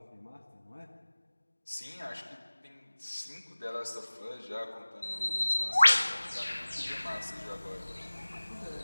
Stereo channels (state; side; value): inverted; both; correlation -1.00